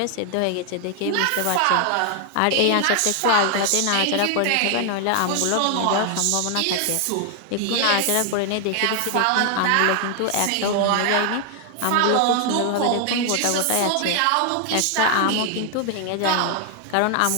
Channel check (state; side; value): different; both; correlation 0.00